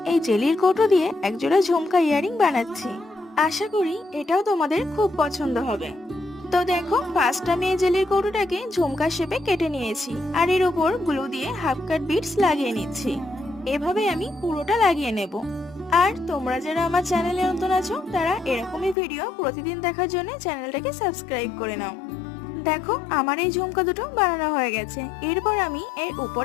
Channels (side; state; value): right; drops out; at 18.9 s